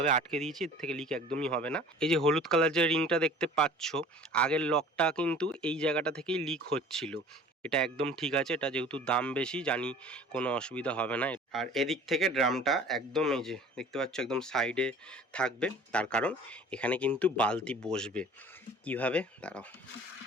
আটকে দিয়েছি এর থেকে লিক একদমই হবে না। এই যে হলুদ কালার যে রিংটা দেখতে পাচ্ছ, আগের লকটা কিন্তু এই জায়গাটা থেকেই লিক হচ্ছিল, এটা একদম ঠিক আছে, এটা যেহেতু দাম বেশি জানি কোনো অসুবিধা হবে না। আর এদিক থেকে ড্রামটা একদম এই যে দেখতে পাচ্ছ একদম সাইডে থাকবে, তার কারণ এখানে কিন্তু বালতি বসবে। কিভাবে, দাঁড়াও,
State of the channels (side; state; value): both; normal; correlation 0.46